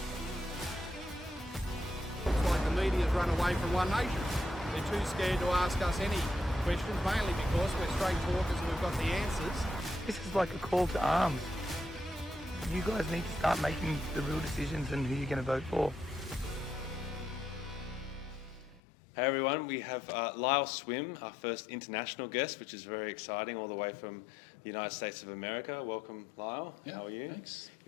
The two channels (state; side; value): drops out; right; at 18.8 s